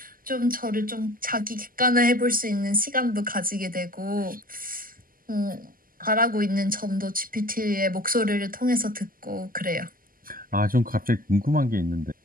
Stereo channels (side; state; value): left; late; 0.41 ms